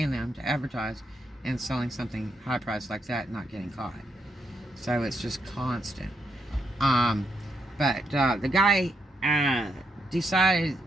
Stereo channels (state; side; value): normal; both; correlation 0.80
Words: them to advertise and selling something high priced like that and not getting caught. So it's just constant. But the guy decided,